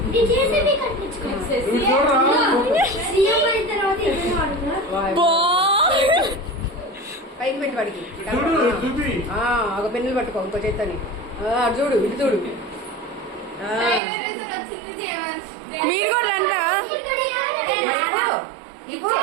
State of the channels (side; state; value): left; drops out; at 14.0 s